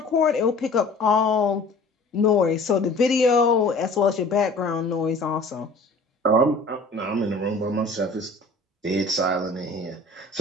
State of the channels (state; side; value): quieter; right; 3.1 dB